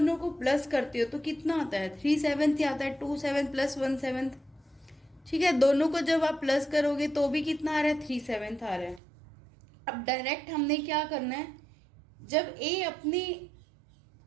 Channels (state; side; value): drops out; left; at 9.0 s